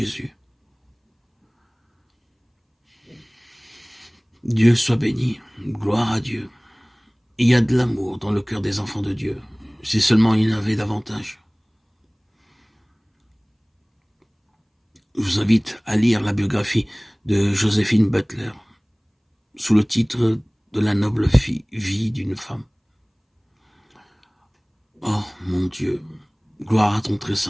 Dieu soit béni, gloire à Dieu. Il y a de l'amour dans le cœur des enfants de Dieu, si seulement il y en avait davantage. Je vous invite à lire la biographie de Joséphine Butler, sous le titre de la noble vie d'une femme. Oh mon Dieu, gloire à ton très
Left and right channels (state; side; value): identical; both; correlation 1.00